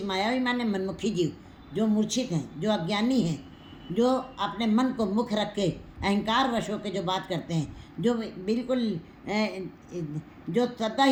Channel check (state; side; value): identical; both; correlation 1.00